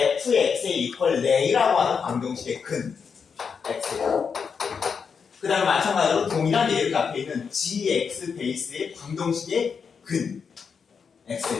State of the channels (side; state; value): right; quieter; 6.1 dB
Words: equal lay라고 하는 방정식의 근 x예요. 그 다음에 마찬가지로 동일한 예를 앞에 있는 gx 베이스의 방정식의 근